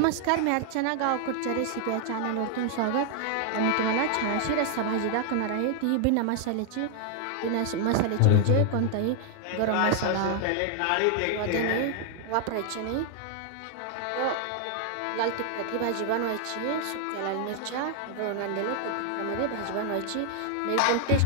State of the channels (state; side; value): different; both; correlation 0.00